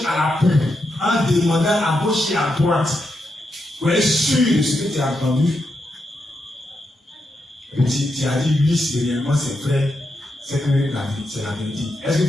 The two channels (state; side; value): normal; both; correlation 0.84